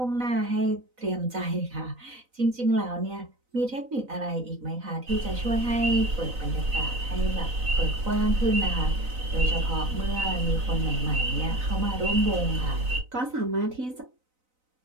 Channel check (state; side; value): late; left; 4.0 ms